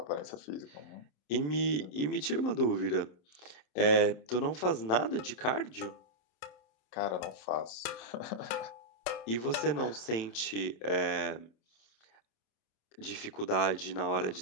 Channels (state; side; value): late; right; 27 ms